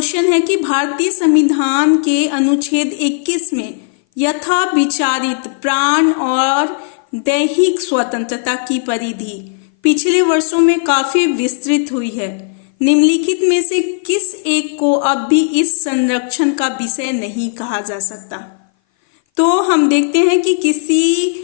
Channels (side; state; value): right; silent; 59 dB below the other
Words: है कि भारतीय संविधान के अनुच्छेद 21 में यथा विचारित प्राण और दैहिक स्वतंत्रता की परिधि पिछले वर्षों में काफी विस्तृत हुई है। निम्नलिखित में से किस एक को अब भी इस संरक्षण का विषय नहीं कहा जा सकता? तो हम देखते हैं कि